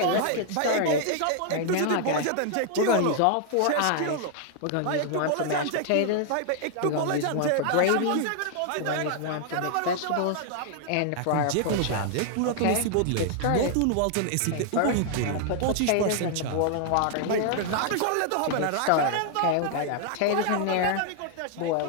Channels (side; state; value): both; different; correlation 0.00